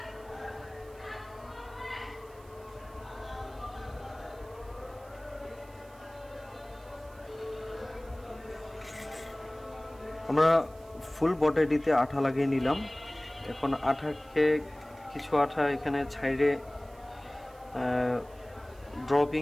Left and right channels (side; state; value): right; noise; hiss, 27 dB below the sound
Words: আমরা ফুল বডিতে আঠা লাগিয়ে নিলাম। এখন আঠাকে কিছু আঠা এখানে সাইডে